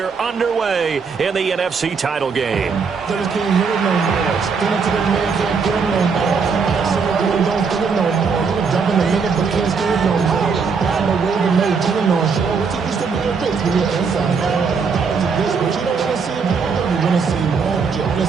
underway in the NFC title game?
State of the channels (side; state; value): left; quieter; 5.4 dB